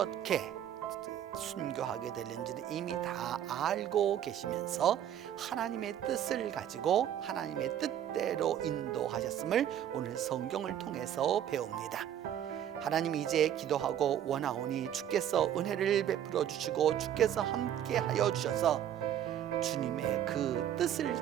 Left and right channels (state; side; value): quieter; left; 10.3 dB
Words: 순교하게 되는지를 이미 다 알고 계시면서 하나님의 뜻을 가지고 하나님의 뜻대로 인도하셨음을 오늘 성경을 통해서 배웁니다. 하나님, 이제 기도하고 원하오니 주께서 은혜를 베풀어 주시고 주께서 함께 하여 주셔서 주님의 그 뜻을